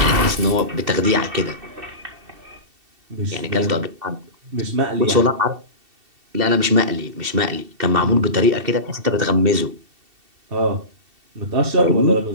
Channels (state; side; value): late; left; 2.7 ms